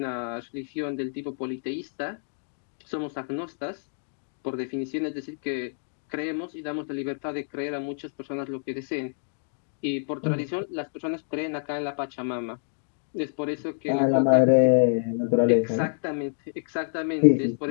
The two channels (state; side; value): silent; right; digital silence